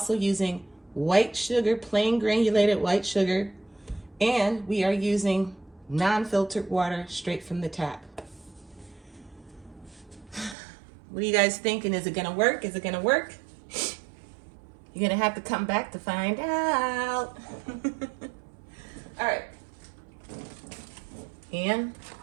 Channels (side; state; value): left; drops out; at 10.6 s